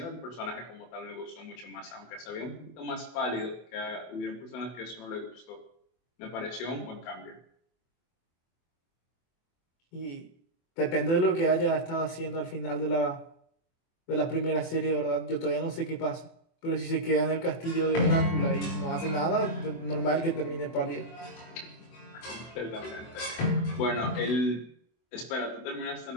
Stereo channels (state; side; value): late; right; 24 ms